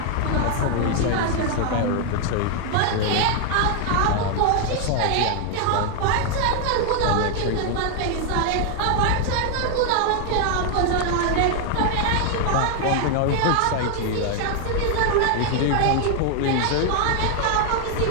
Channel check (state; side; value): different; both; correlation 0.00